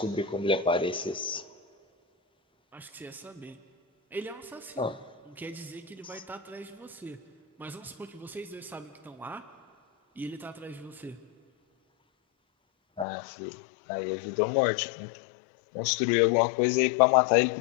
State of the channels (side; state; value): right; drops out; at 13.1 s